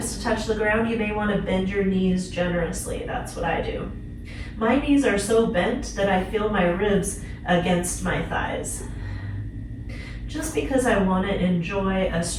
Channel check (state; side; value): identical; both; correlation 1.00